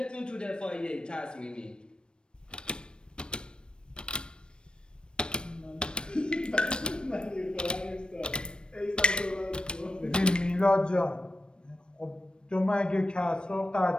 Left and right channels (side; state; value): right; late; 0.054 ms